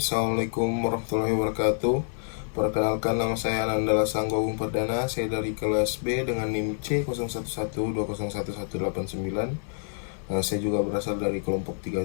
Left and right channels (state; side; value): silent; right; 60 dB below the other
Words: Assalamualaikum warahmatullahi wabarakatuh. Perkenalkan, nama saya Anandala Sanggogung Perdana. Saya dari kelas B dengan NIM C0112011189. Saya juga berasal dari kelompok